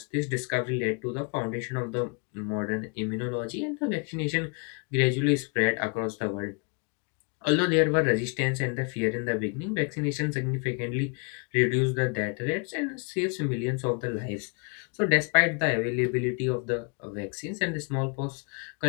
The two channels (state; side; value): quieter; right; 35.8 dB